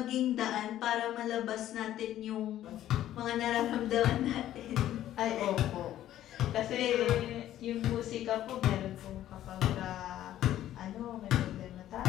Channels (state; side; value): quieter; right; 12.6 dB